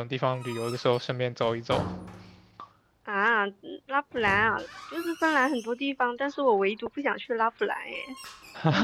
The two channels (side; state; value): both; identical; correlation 1.00